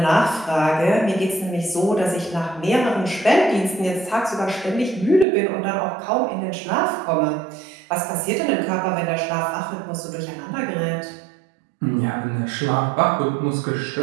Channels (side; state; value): left; drops out; at 5.2 s